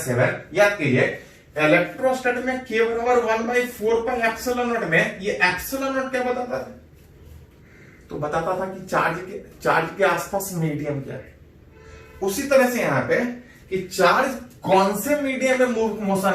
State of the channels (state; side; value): identical; both; correlation 1.00